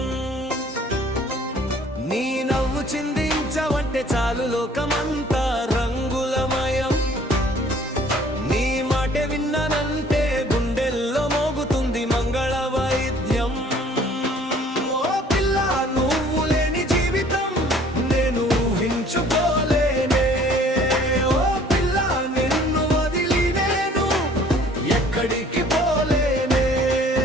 నీ నవ్వు చిందించవంటే చాలు లోకమంతా రంగులమయం. నీ మాట విన్నానంటే గుండెల్లో మోగుతుంది మంగళ వైద్యం. ఓ పిల్ల నువ్వు లేని జీవితం నేను ఊహించుకోలేనే. ఓ పిల్ల నిన్ను వదిలి నేను ఎక్కడికి పోలేనే.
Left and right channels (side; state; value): both; normal; correlation 0.55